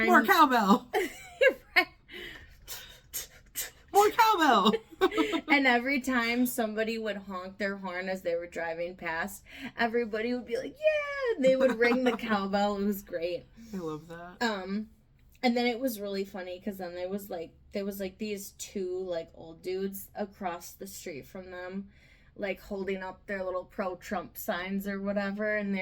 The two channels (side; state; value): both; identical; correlation 1.00